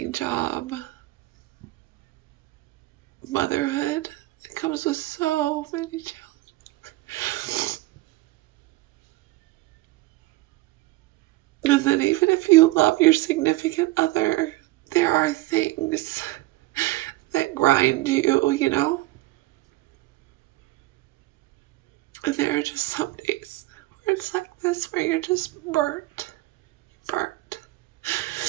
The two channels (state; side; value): quieter; left; 18.8 dB